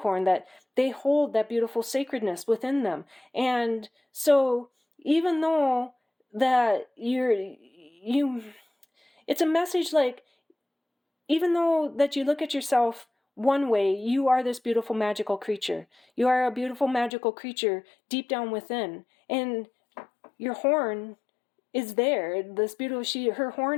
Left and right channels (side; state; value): right; drops out; at 17.1 s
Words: that they hold that beautiful sacredness within them. And so even though that it's a message, like, even though that you look at yourself one way, you are this beautiful magical creature. You are a beautiful magical creature deep down within, and your horn is there. Her